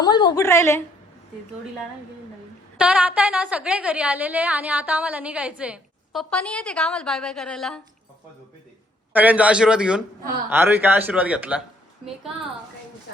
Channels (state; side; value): normal; both; correlation 0.66